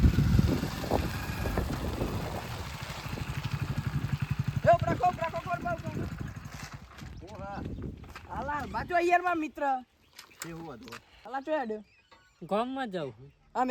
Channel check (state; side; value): identical; both; correlation 1.00